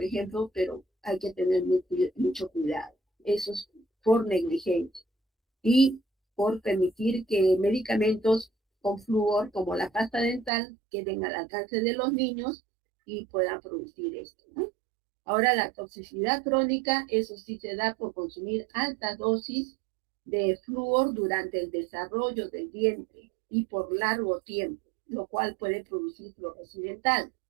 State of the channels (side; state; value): left; drops out; at 10.5 s